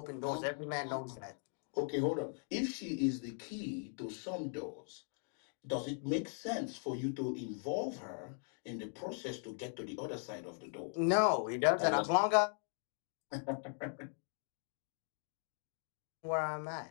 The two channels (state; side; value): silent; right; 51 dB below the other